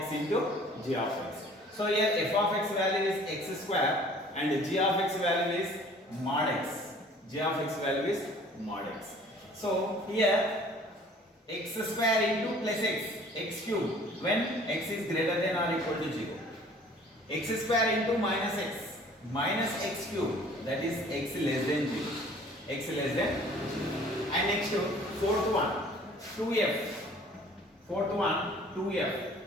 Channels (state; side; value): normal; both; correlation 0.51